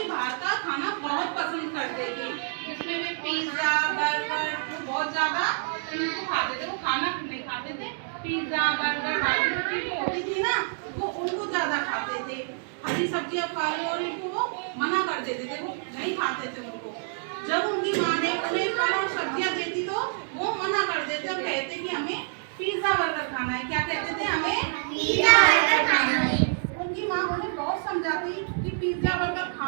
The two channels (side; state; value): left; silent; 60 dB below the other